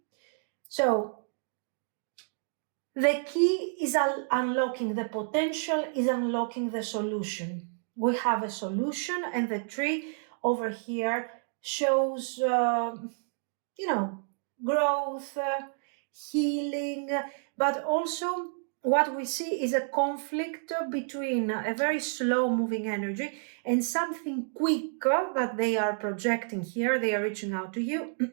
So the key is unlocking the potential, is unlocking the solution. We have a solution, and the tree over here shows growth, healing, but also what we see is a conflict between a very slow moving energy and something quicker that they are projecting here. They are reaching out to you.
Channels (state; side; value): silent; left; digital silence